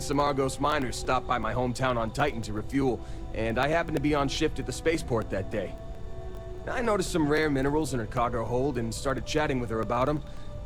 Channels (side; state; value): both; identical; correlation 1.00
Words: some Argos miners stopped by my hometown on Titan to refuel, and I happened to be on shift at the spaceport that day. I noticed some rare minerals in her cargo hold and started chatting with her about them.